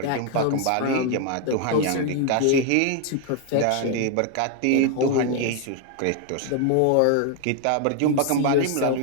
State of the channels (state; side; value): different; both; correlation 0.00